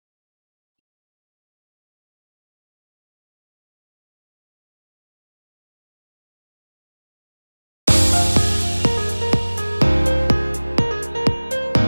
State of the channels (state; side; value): inverted; both; correlation -1.00